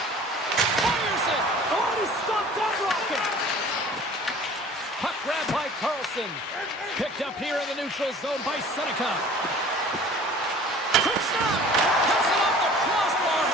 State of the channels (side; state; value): both; normal; correlation 0.46